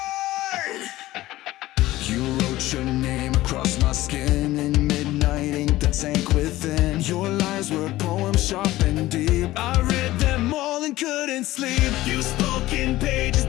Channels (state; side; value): quieter; right; 16.7 dB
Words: You wrote your name across my skin in midnight ink that sank within. Your lies were poems sharp and deep. I read them all and couldn't sleep. You spoke in pages